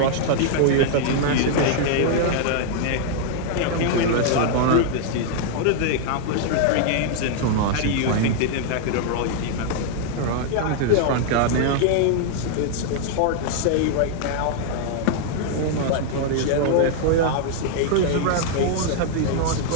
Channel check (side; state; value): both; different; correlation -0.01